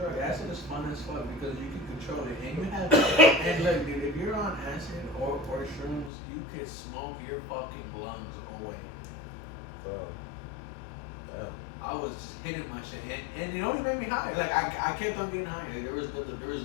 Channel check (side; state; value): right; drops out; at 6.1 s